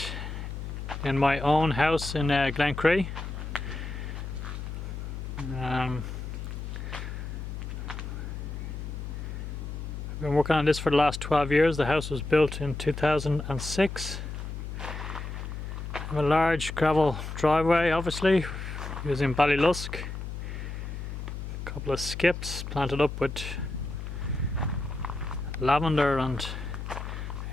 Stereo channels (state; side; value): noise; left; hum, 7 dB below the sound